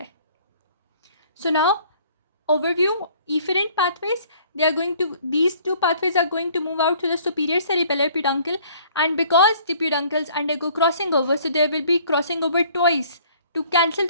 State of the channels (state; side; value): inverted; both; correlation -0.56